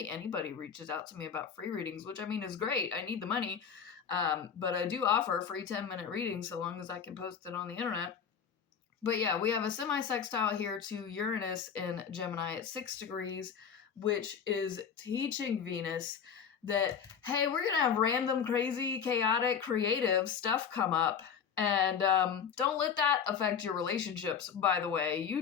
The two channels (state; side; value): quieter; right; 7.2 dB